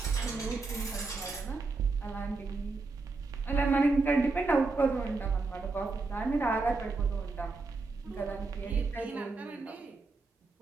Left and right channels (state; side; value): quieter; left; 3.7 dB